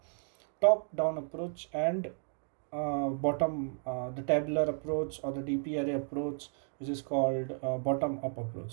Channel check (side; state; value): left; silent; 56 dB below the other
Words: top down approach, and the tabular approach or the DP array approach, which is called bottom up